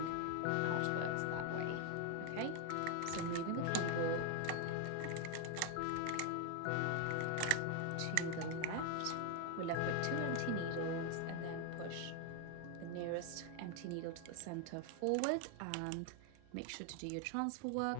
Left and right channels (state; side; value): different; both; correlation 0.01